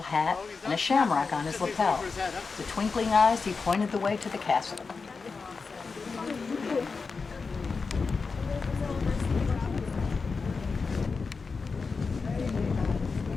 hat, and a shamrock on his lapel. With twinkling eyes, he pointed the way to the castle.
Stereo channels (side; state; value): right; quieter; 4.7 dB